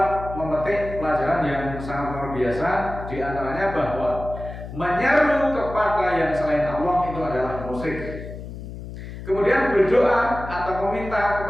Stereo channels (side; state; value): left; noise; hum, 11 dB below the sound